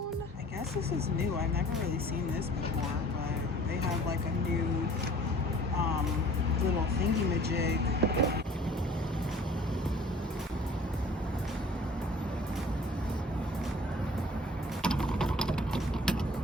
I guess this is new. I've never really seen this before, but they have like a new little thingy-majig.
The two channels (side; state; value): both; normal; correlation 0.50